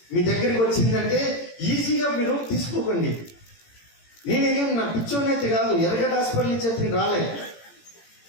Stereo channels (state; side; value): late; right; 18 ms